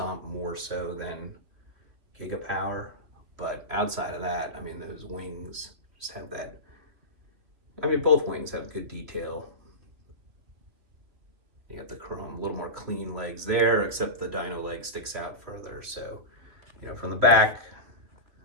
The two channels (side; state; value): left; late; 3.1 ms